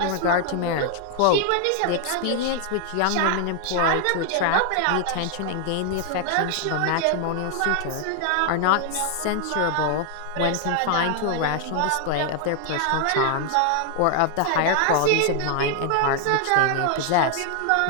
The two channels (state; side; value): different; both; correlation 0.00